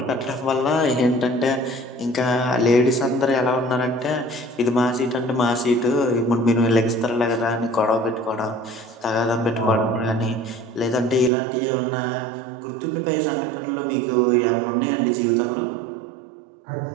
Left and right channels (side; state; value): left; drops out; at 11.3 s